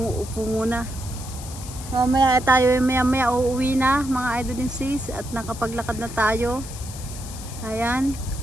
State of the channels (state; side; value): noise; left; hiss, 14 dB below the sound